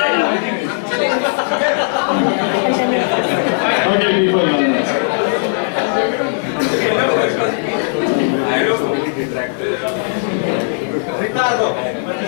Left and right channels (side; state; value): right; silent; digital silence